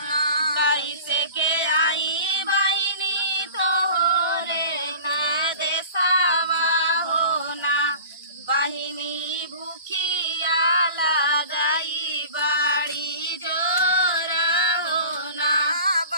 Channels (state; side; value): inverted; both; correlation -0.40